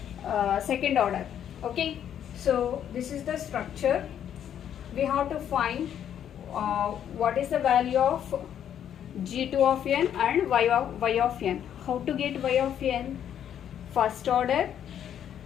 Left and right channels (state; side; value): quieter; right; 9.6 dB